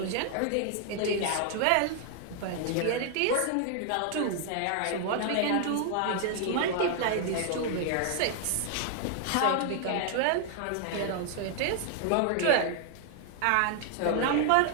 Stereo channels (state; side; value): different; both; correlation 0.00